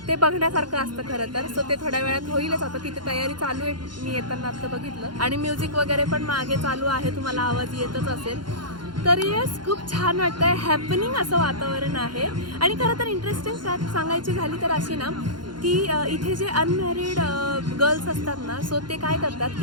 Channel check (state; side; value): late; left; 0.71 ms